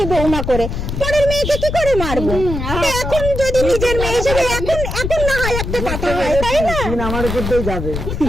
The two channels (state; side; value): noise; left; rumble, 4 dB below the sound